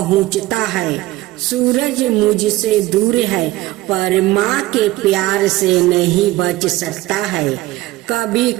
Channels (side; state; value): left; quieter; 17.8 dB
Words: है। सूरज मुझसे दूर है, पर माँ के प्यार से नहीं बच सकता है। कभी